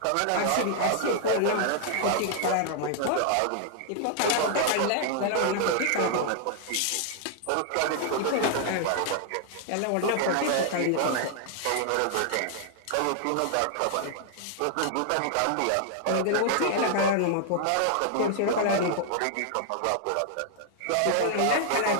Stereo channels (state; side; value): different; both; correlation -0.01